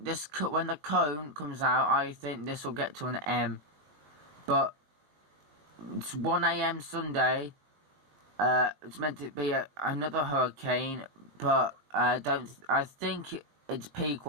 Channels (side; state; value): left; late; 21 ms